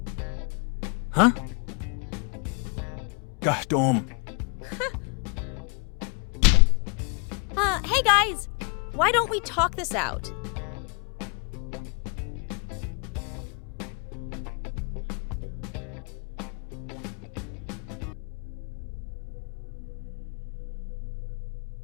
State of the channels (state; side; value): quieter; right; 34.8 dB